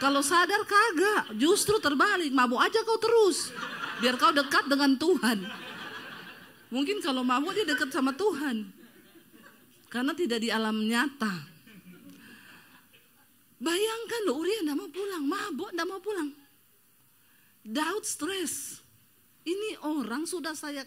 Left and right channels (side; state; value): both; identical; correlation 1.00